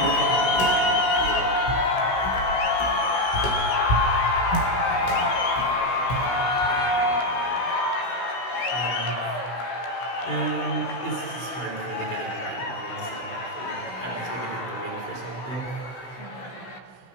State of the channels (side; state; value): right; late; 16 ms